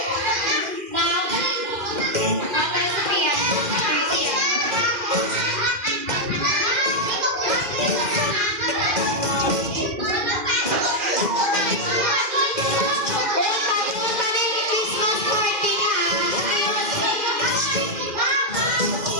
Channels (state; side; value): late; left; 2.4 ms